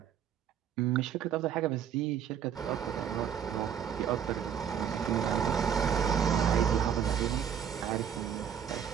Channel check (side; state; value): left; quieter; 8.5 dB